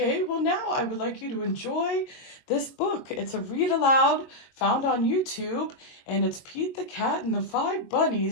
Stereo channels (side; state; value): right; late; 22 ms